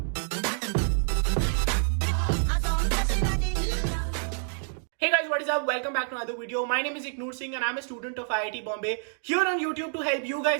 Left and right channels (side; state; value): left; silent; 60 dB below the other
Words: Hey guys, what is up? Welcome back to another video. My name is Iknoor Singh and I'm a student of IIT Bombay here on YouTube to help you